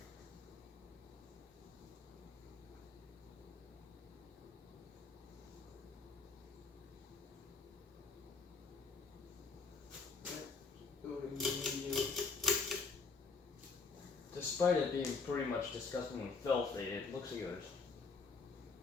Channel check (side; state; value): right; quieter; 4.5 dB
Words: Despite it being pretty much disgustingly filthy, it looks like it was